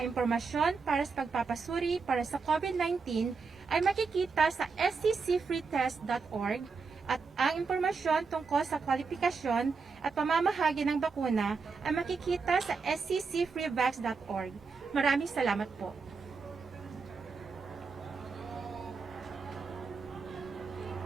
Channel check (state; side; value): quieter; left; 4.8 dB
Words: impormasyon para sa pagpapasuri para sa COVID-19 ay makikita sa sccfreetest.org at ang impormasyon tungkol sa kwalifikasyon at pamamahagi ng bakuna ay makikita sa sccfreevax.org. Maraming salamat po.